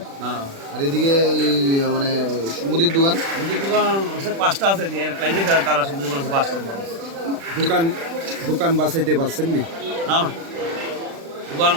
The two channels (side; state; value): left; late; 36 ms